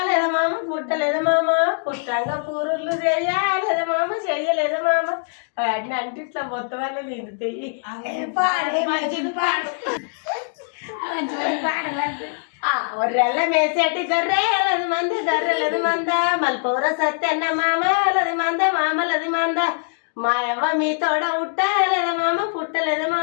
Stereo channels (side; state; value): right; silent; digital silence